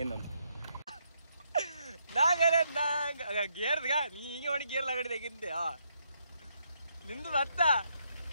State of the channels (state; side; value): inverted; both; correlation -0.77